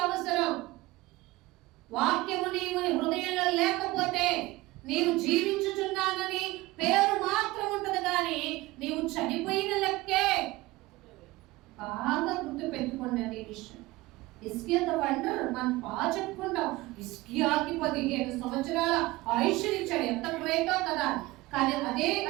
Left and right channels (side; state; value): left; quieter; 19.9 dB